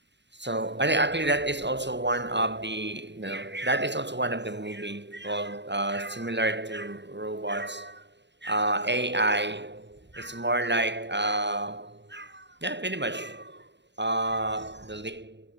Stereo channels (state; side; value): late; left; 0.52 ms